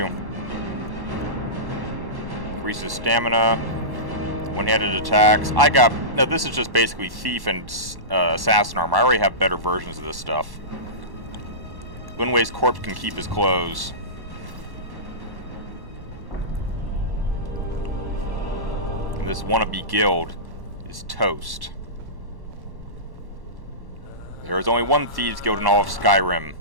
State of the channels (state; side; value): late; left; 1.1 ms